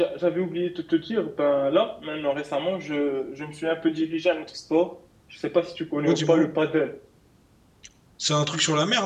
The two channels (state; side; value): identical; both; correlation 1.00